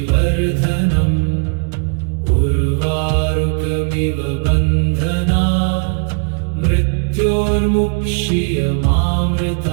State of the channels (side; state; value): left; quieter; 38.5 dB